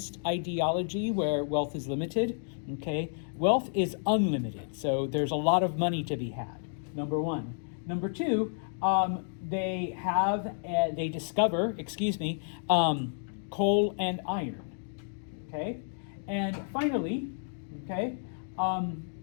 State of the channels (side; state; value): right; silent; digital silence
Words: ideology where wealth is limited. Okay, wealth is unlimited, so there's a lot of money to be had. Number one. Number two, they discover, coal and iron. Okay, and finally, okay,